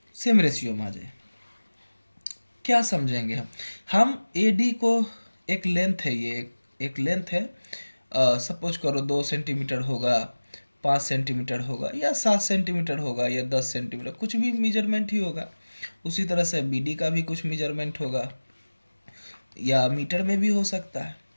same ratio में आ जाए। क्या समझेंगे हम ए डी को एक लेंथ है, ये एक लेंथ है, सपोज करो 2 सेंटीमीटर होगा, 5 सेंटीमीटर होगा या 7 सेंटीमीटर होगा या 10 सेंटीमीटर, कुछ भी मेजरमेंट ही होगा। उसी तरह से बी डी का भी कुछ मेजरमेंट होगा या मीटर में भी हो सकता है।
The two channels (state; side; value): inverted; both; correlation -1.00